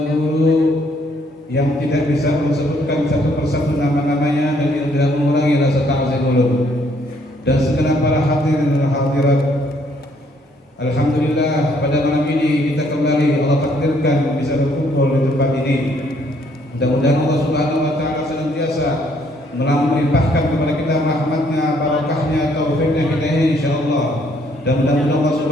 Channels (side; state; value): both; normal; correlation 0.67